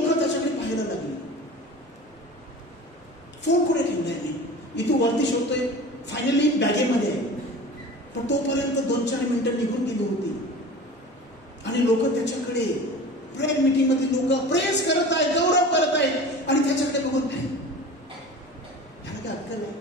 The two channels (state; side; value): normal; both; correlation 0.37